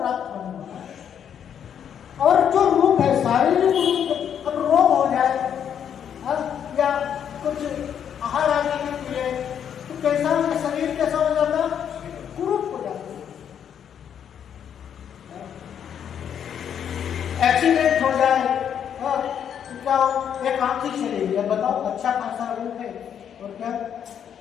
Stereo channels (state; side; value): quieter; right; 8.6 dB